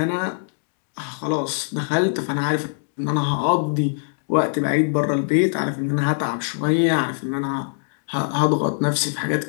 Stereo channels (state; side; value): silent; right; digital silence